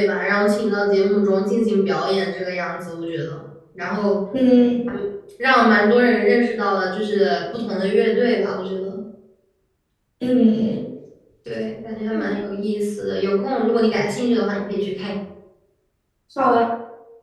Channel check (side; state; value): both; identical; correlation 1.00